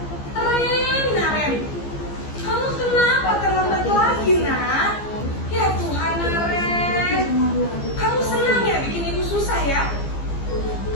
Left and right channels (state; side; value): late; right; 15 ms